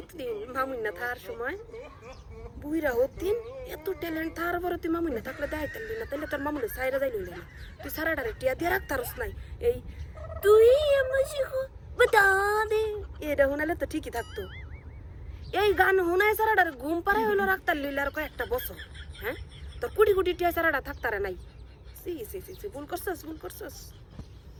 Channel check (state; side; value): identical; both; correlation 1.00